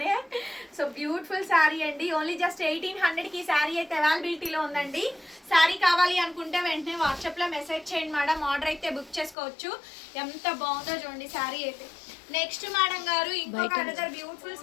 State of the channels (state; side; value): drops out; right; at 9.3 s